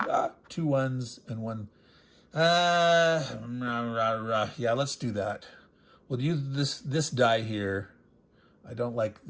2 1s, and 1. Yeah, let's do that. We'll use this die here. I don't like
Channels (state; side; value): identical; both; correlation 1.00